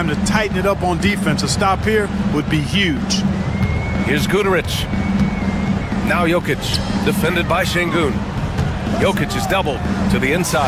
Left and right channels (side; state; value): both; identical; correlation 1.00